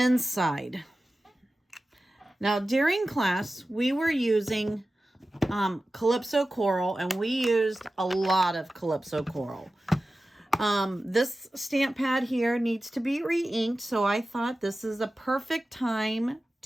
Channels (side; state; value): both; normal; correlation 0.94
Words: Now, during class, we were using Calypso Coral, and we used a lot of Calypso Coral. This stamp pad here needs to be re-inked, so I thought this is a perfect time